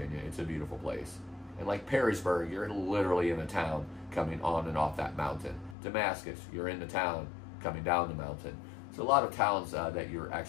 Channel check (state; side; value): drops out; right; at 5.8 s